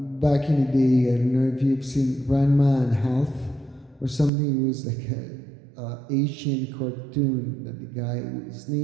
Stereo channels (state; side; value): drops out; left; at 4.3 s